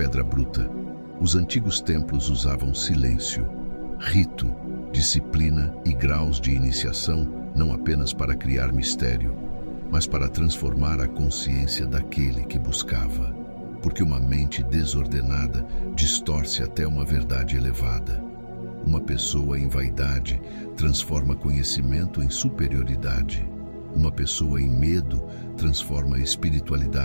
bruta. Os antigos templos usavam silêncio, rito, disciplina e graus de iniciação, não apenas para criar mistério, mas para transformar a consciência daquele que buscava. Porque uma mente desordenada distorce até uma verdade elevada. Uma pessoa em vaidade transforma conhecimento em superioridade. Uma pessoa em medo transforma a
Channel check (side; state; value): both; inverted; correlation -1.00